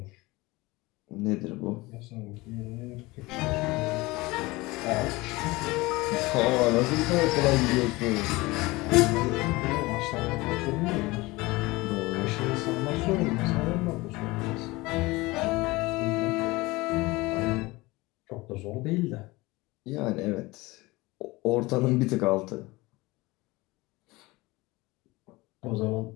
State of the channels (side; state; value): right; quieter; 21.8 dB